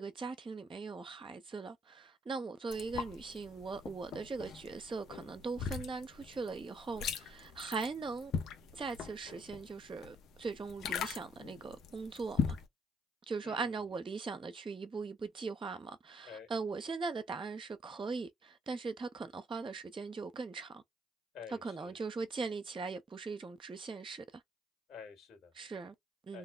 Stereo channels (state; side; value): normal; both; correlation 0.69